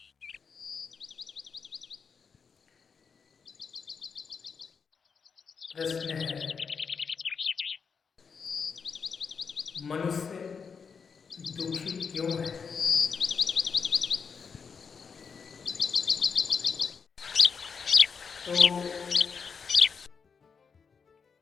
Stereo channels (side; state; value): right; quieter; 5.9 dB